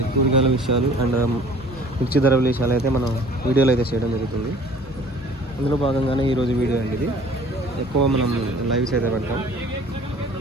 కూరగాయల విషయాలు అండ్ మిర్చి ధర విషయాలు అయితే మనం వీడియోలు అయితే చేయడం జరుగుతుంది. అందులో భాగంగానే ఈరోజు వీడియో అండి ఇది. ఎక్కువ మనం లైవ్స్ అయితే పెడతాం.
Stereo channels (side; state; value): both; normal; correlation 0.50